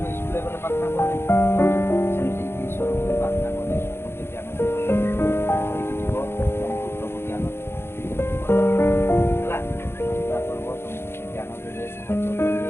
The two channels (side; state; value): right; late; 0.12 ms